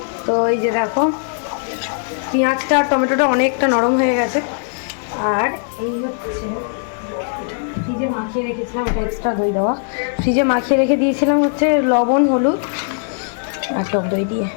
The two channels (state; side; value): silent; right; digital silence